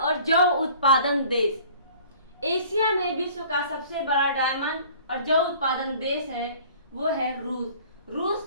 जौ उत्पादन देश। एशिया में विश्व का सबसे बड़ा डायमंड और जौ उत्पादन देश है वो है रूस।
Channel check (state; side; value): inverted; both; correlation -0.50